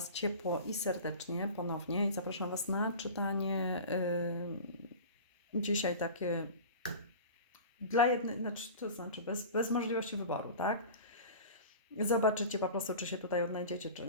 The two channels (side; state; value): both; inverted; correlation -0.35